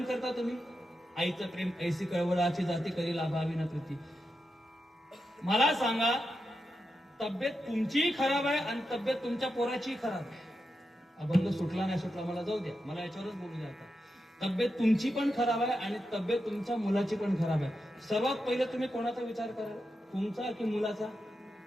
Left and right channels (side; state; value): both; normal; correlation 0.88